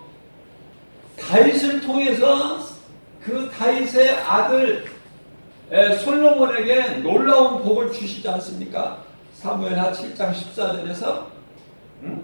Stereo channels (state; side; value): inverted; both; correlation -1.00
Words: 다윗을 통해서 그 다윗의 아들 솔로몬에게 놀라운 복을 주시지 않습니까? 사무엘하 7장 14절에서